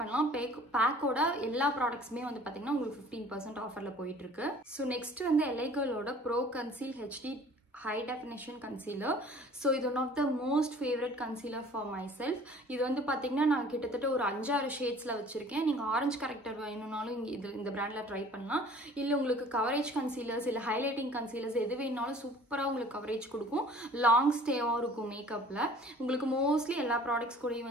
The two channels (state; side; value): normal; both; correlation 0.49